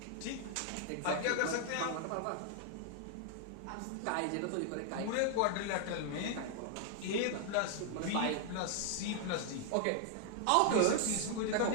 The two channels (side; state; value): both; different; correlation 0.00